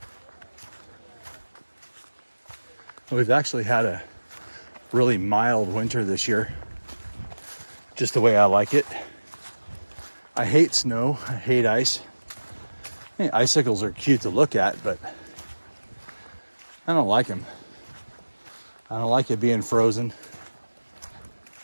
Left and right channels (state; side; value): inverted; both; correlation -1.00